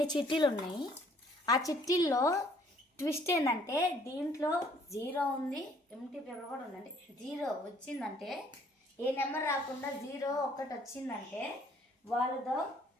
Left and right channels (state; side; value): normal; both; correlation 0.61